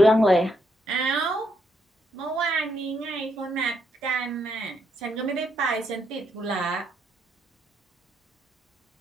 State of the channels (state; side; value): normal; both; correlation 0.76